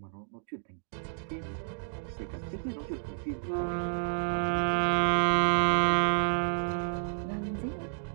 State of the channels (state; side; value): silent; left; digital silence